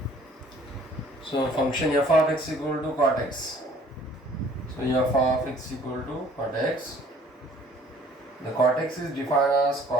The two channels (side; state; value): both; normal; correlation 0.56